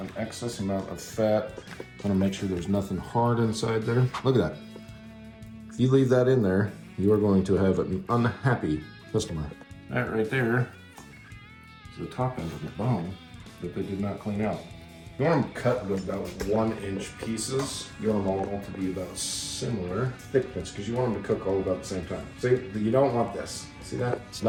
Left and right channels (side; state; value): both; identical; correlation 1.00